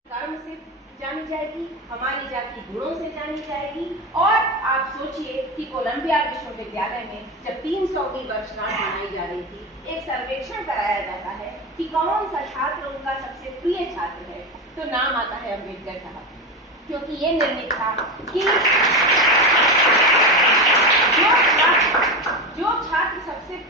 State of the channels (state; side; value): normal; both; correlation 0.19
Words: कर्म से जानी जाएगी, हमारी जाति गुणों से जानी जाएगी। और आप सोचिए कि कोलंबिया विश्वविद्यालय में जब 300वीं वर्षगांठ मनाई जा रही थी, एक सर्वेक्षण कराया जाता है कि कौन सा छात्र उनका सबसे प्रिय छात्र है, तो नाम आता है अम्बेडकर साहब, क्योंकि ये निर्णित था कि जो छात्र सबसे